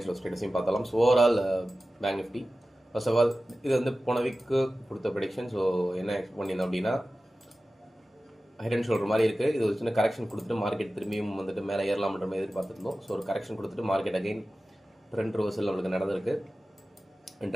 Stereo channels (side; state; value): both; normal; correlation 0.95